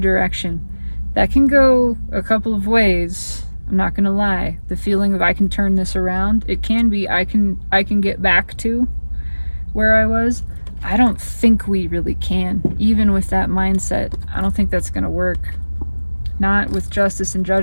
That can go a couple of ways. I'm not gonna lie. The feeling of I can turn this around, it can be I can get back to where I was. I don't think we really can. Even with that mindset, I don't think that's gonna work. Not with justice and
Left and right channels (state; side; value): inverted; both; correlation -1.00